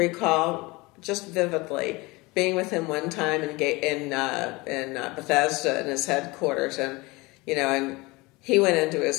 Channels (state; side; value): quieter; right; 23.6 dB